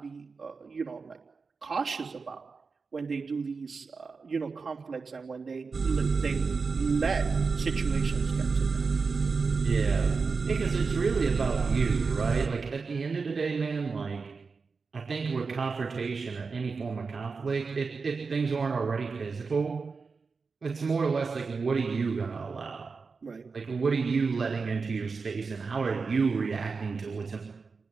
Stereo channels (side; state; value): left; quieter; 4.7 dB